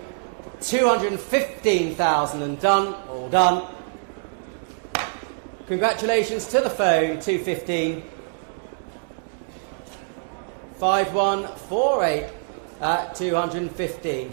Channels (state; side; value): silent; left; digital silence